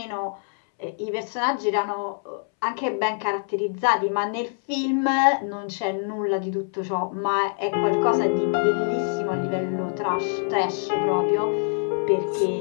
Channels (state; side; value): silent; right; 62 dB below the other